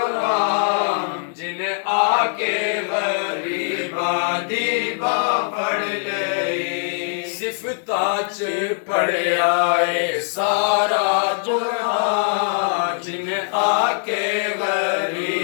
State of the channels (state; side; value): silent; right; digital silence